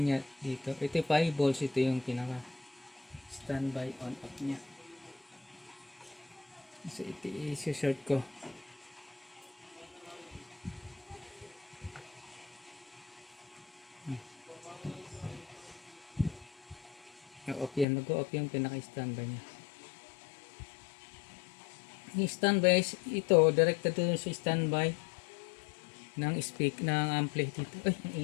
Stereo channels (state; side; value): drops out; right; at 17.9 s